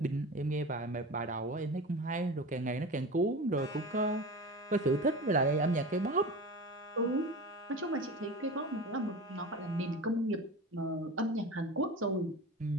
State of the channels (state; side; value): normal; both; correlation 0.31